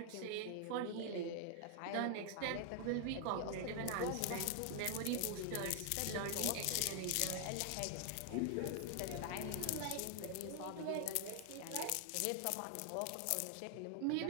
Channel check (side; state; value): both; different; correlation 0.00